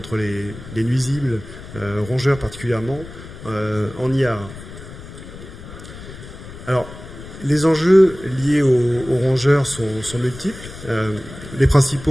les nuisibles, rongeurs particulièrement, en IA. Alors, les enjeux liés aux rongeurs sont multiples. Les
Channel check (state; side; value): noise; left; rumble, 14 dB below the sound